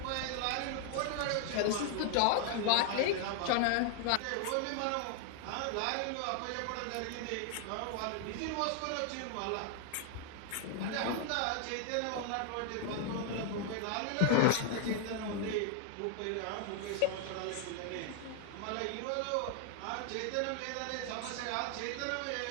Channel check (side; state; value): both; different; correlation 0.00